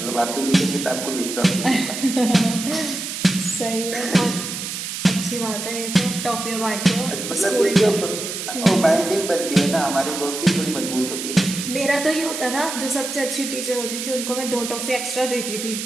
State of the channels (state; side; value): noise; right; hiss, 6 dB below the sound